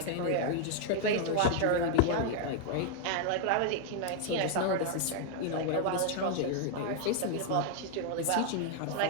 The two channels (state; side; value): different; both; correlation 0.00